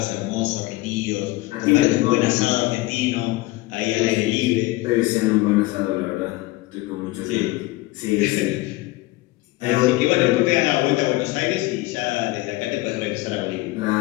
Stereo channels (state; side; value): quieter; right; 20.0 dB